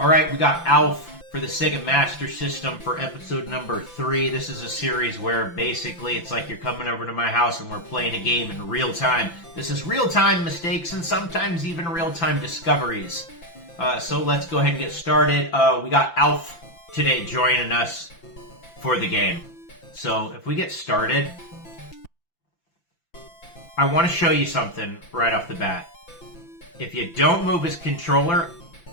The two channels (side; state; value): right; late; 5.9 ms